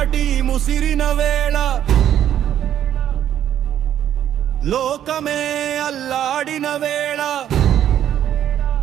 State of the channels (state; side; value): quieter; left; 10.7 dB